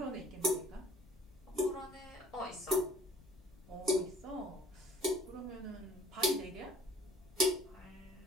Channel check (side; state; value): left; noise; rumble, 23 dB below the sound